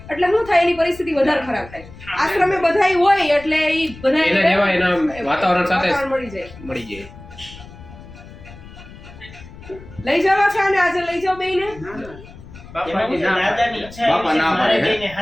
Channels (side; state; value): left; noise; rumble, 18 dB below the sound